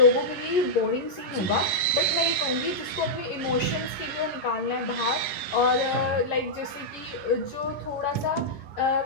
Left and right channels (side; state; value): right; late; 11 ms